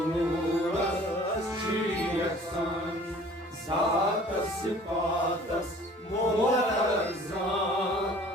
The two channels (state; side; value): normal; both; correlation 0.50